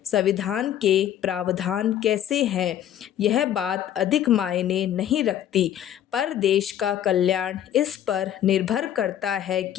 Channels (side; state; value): right; quieter; 10.8 dB